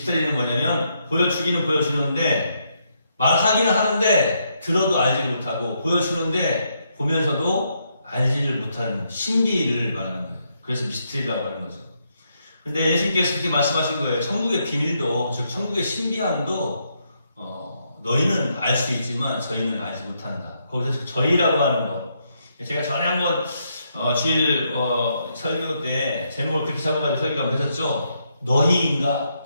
뭐냐면 보여주기는 보여주는데 말하기는 하는데 들어도 알지를 못하고 보여주는데 보면서도 알지를 못하는 신비를 말하는 거예요. 그래서 미스터리라고 하는 거죠. 근데 예수님께서 그렇게 말씀하신 거예요. 천국의 비밀도, 즉 천국의 신비함도 너희는 알 수 있지만 저희는 알지 못한다. 거기서 저희라고 하는 것. 제가 전에 한번 주일 설교 때 제목을 그렇게 잡아가지고 설교가 한번 했었죠. 너희인가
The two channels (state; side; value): inverted; both; correlation -0.78